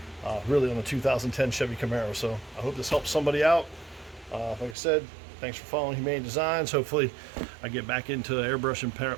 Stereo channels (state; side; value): drops out; left; at 4.8 s